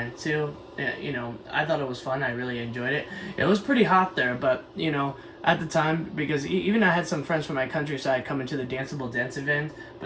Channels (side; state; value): both; identical; correlation 1.00